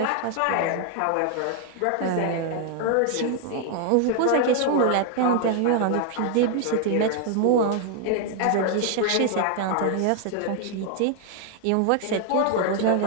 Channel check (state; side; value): different; both; correlation 0.00